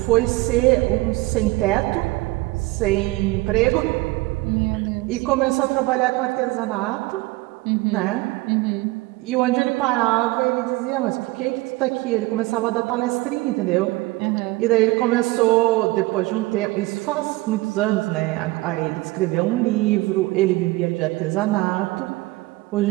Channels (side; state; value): left; quieter; 21.2 dB